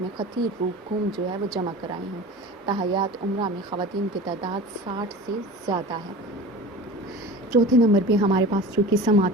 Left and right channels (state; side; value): normal; both; correlation 0.36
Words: میں خطیر رقوم جو ہے وہ جمع کرائی ہوں۔ تاحیات عمرہ میں خواتین کی تعداد 60 سے زیادہ ہے۔ چوتھے نمبر پہ ہمارے پاس جو قسم